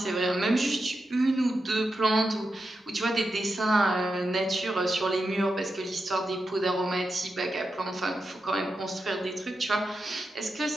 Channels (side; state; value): both; normal; correlation 0.88